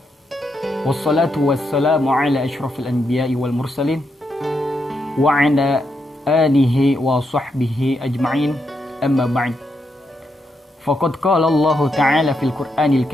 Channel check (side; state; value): both; normal; correlation 0.81